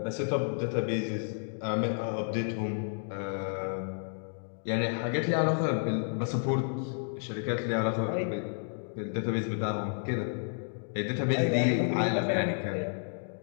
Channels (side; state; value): right; silent; digital silence